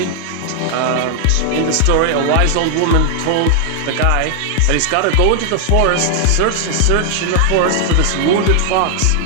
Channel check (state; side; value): different; both; correlation 0.00